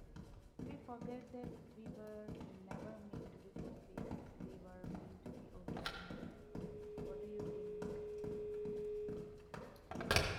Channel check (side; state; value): both; identical; correlation 1.00